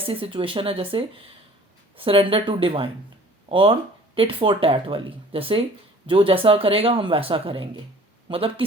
सिचुएशन है जैसे सरेंडर टू डिवाइन और टिट फॉर टैट वाली। जैसे जो जैसा करेगा हम वैसा करेंगे। मतलब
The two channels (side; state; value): both; normal; correlation 0.50